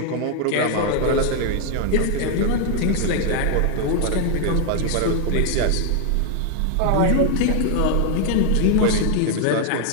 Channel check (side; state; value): both; different; correlation 0.00